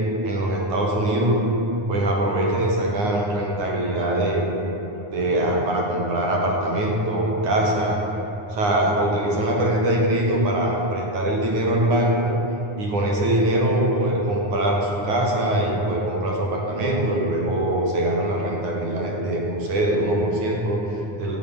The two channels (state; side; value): late; left; 9.7 ms